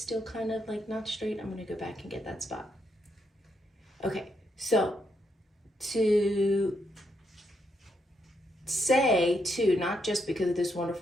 kind of like not straight? I'm gonna go back and get that spot. Okay, so to say too, not just because of this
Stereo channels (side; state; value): both; normal; correlation 0.79